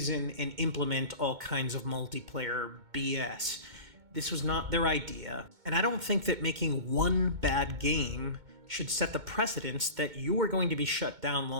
and implement all kinds of multiplayer BS. This was not their idea, and I don't think that making one bad game should set the precedence that you are going to be shut down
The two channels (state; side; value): late; left; 2.2 ms